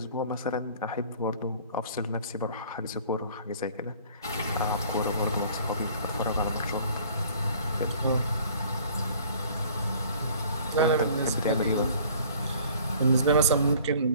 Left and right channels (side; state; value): both; inverted; correlation -0.52